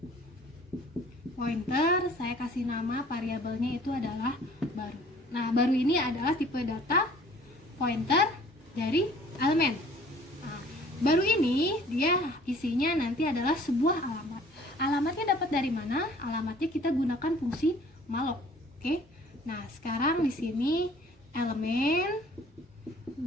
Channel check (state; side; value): normal; both; correlation 0.53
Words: pointer, saya kasih nama variabelnya itu adalah baru. Nah, baru ini adalah tipe data pointer dari elemen. Nah, baru ini dia isinya nanti adalah sebuah alamat. Alamatnya dapat dari mana? Alamatnya kita gunakan fungsi malloc. Oke. Nah, sekarang di sini elemen